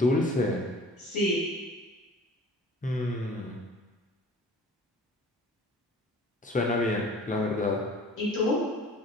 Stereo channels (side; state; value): both; normal; correlation 0.47